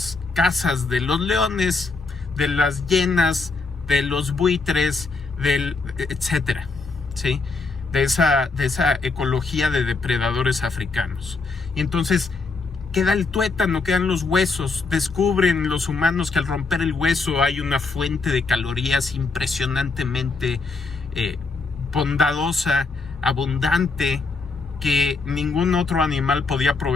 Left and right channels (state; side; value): quieter; right; 4.0 dB